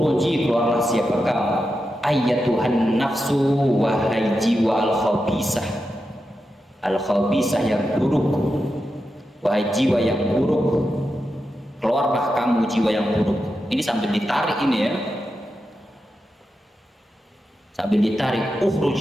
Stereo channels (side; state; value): both; normal; correlation 0.89